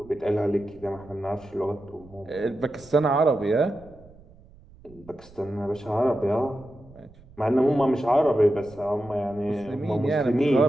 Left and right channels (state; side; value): noise; right; rumble, 24 dB below the sound